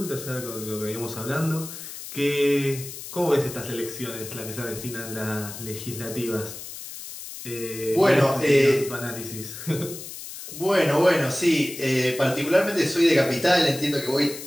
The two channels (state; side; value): noise; left; hiss, 11 dB below the sound